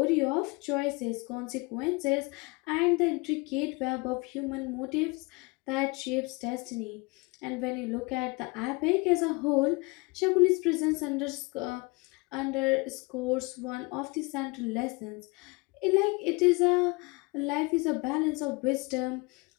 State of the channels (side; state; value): right; quieter; 26.6 dB